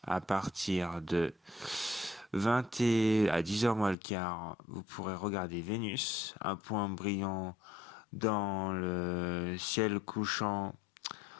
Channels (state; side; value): drops out; right; at 4.0 s